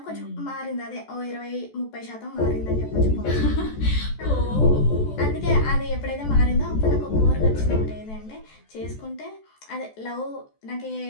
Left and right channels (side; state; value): right; late; 14 ms